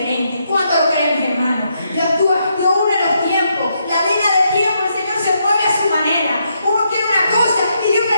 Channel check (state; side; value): inverted; both; correlation -0.78